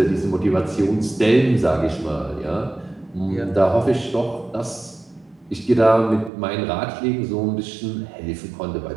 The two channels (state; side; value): drops out; left; at 6.3 s